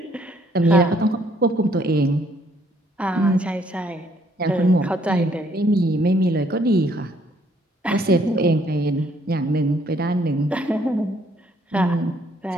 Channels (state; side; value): normal; both; correlation 0.66